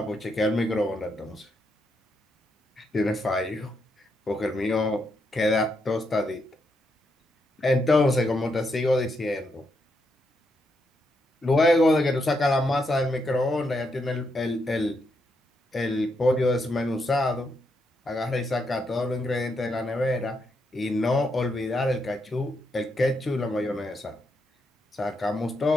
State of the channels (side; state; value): both; normal; correlation 0.80